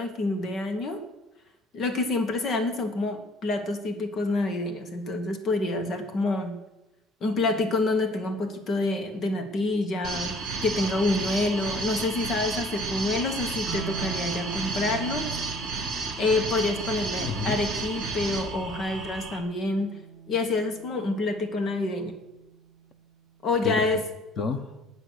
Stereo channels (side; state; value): both; normal; correlation 0.55